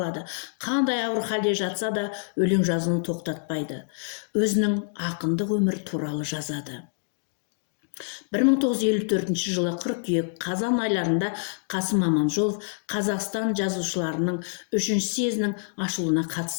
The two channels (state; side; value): silent; right; digital silence